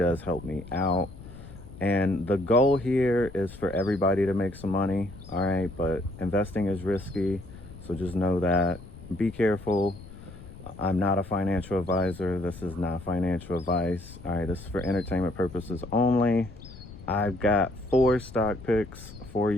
help me out. And the goal here is for everybody to make some money, all right? But investing is risky, so just know that. Be careful. I'm not a financial advisor. This is not financial advice, all right? This is for entertainment purposes only. I've got 4 stock picks for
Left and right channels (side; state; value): left; noise; rumble, 16 dB below the sound